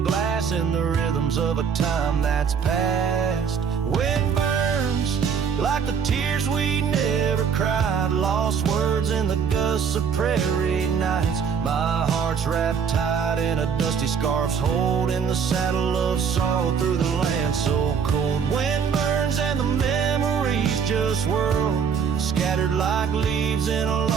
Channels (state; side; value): quieter; left; 6.7 dB